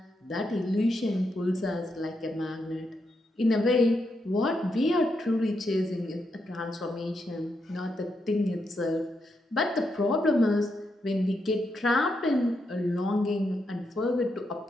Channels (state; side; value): normal; both; correlation 0.82